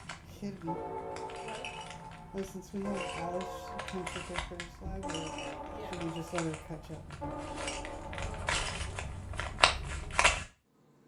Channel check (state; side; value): identical; both; correlation 1.00